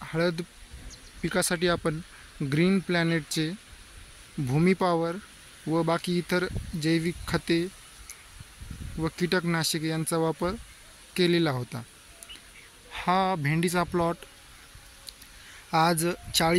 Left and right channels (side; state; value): both; identical; correlation 1.00